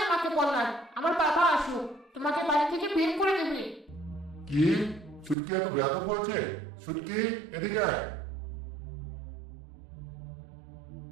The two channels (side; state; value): left; drops out; at 5.4 s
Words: আমাকে বলার, আমার বাবা আসুক, তোমাকে বাড়ি থেকে বের করে দেবে। কি? ছুটকি এত ব্যাধ করেছে? ছুটকি, এদিকে আয়।